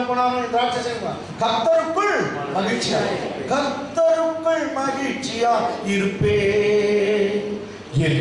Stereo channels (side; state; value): both; identical; correlation 1.00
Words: போனாலும் திராட்சை செய்யணும். கர்த்தருக்குள் மகிழ்ச்சியா, கர்த்தருக்குள் மகிழ்ச்சியா இருப்பே,